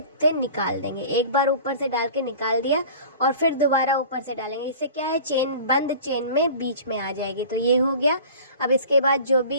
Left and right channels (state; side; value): inverted; both; correlation -0.41